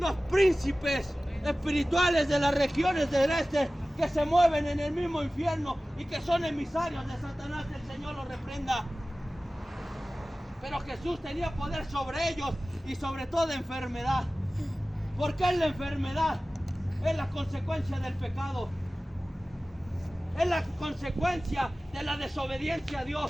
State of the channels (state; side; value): normal; both; correlation 0.97